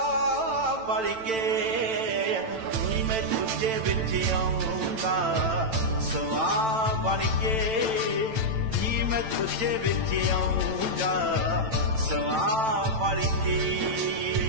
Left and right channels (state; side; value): late; left; 9.0 ms